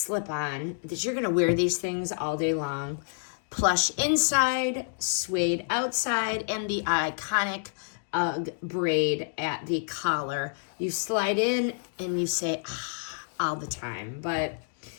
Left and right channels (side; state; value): right; silent; digital silence